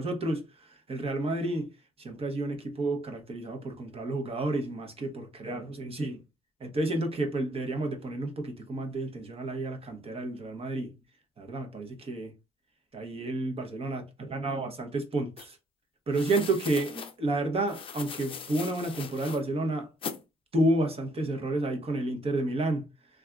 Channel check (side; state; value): both; normal; correlation 0.68